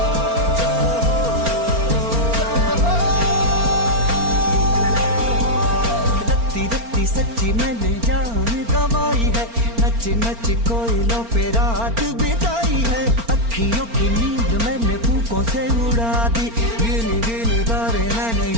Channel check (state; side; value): late; left; 4.4 ms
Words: जय हो रत्ती रत्ती सच्ची मैंने जान गवाई है, नच नच कोयलों पे रात बिताई है। अखियों की नींद मैंने फूकों से उड़ा दी, गिन गिन तारे मैंने